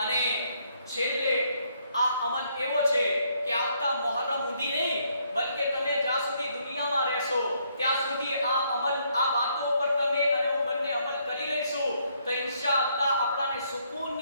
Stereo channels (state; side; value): inverted; both; correlation -0.71